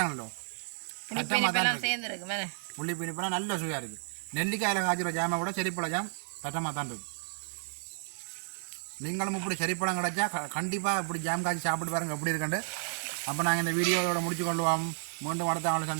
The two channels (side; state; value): left; silent; 57 dB below the other